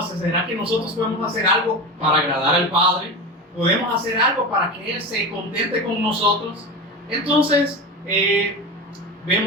¿Será que nosotros podemos hacer algo para agradar al Padre? ¿Podemos hacer algo para que Él se contente con nosotros? Entonces,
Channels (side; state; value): both; normal; correlation 0.25